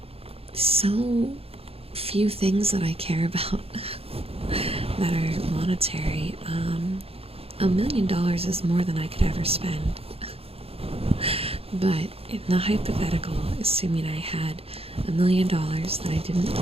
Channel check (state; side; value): late; left; 0.28 ms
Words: so few things that I care about that are monetary. $1 million is more than I could ever spend. But in the hypothetical, assuming I had $1 million that I didn't